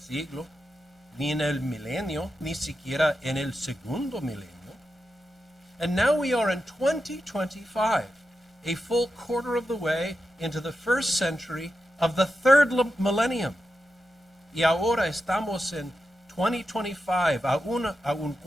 ni en el milenio, ni siquiera en el segundo milenio. And now we are in 2025, a full quarter of the way into the first century of the third millennium. Y ahora estamos en 2025, a un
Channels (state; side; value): normal; both; correlation 0.89